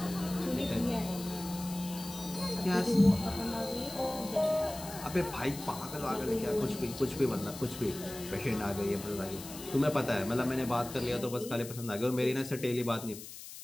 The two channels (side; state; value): left; noise; hiss, 13 dB below the sound